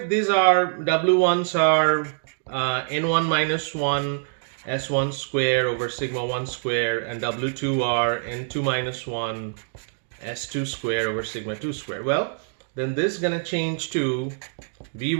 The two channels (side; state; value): left; silent; digital silence